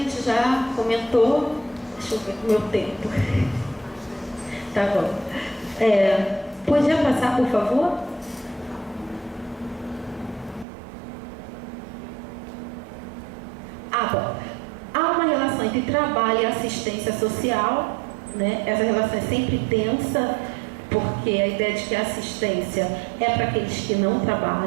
já comentou. Deixa eu ver o meu tempo. Tá bom. Podia passar, por favor? Bom. Há uma relação entre trabalho e assistência social, Essa relação é sempre tensa, porque a ideia de que a assistência é para aqueles que não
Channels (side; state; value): left; drops out; at 10.7 s